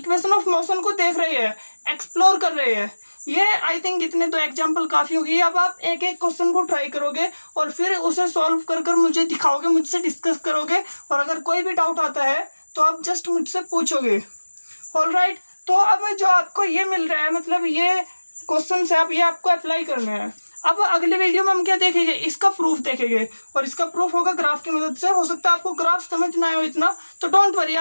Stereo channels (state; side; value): inverted; both; correlation -1.00